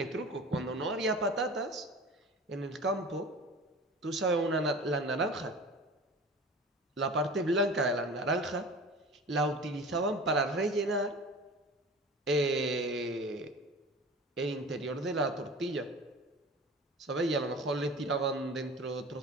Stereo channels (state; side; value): normal; both; correlation 0.38